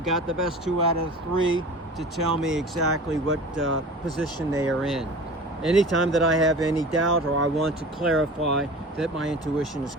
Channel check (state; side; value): normal; both; correlation 0.38